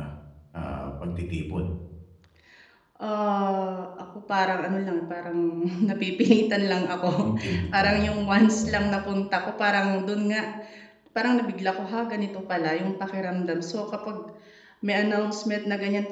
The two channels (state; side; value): identical; both; correlation 1.00